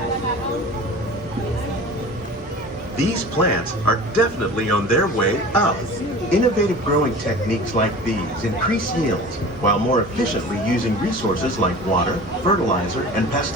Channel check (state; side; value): normal; both; correlation 0.38